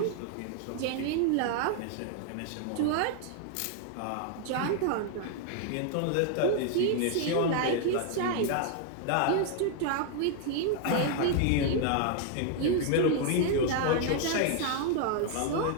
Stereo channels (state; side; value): different; both; correlation 0.00